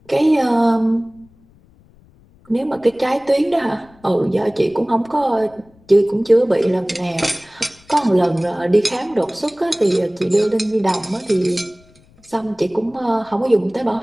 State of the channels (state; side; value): noise; left; rumble, 29 dB below the sound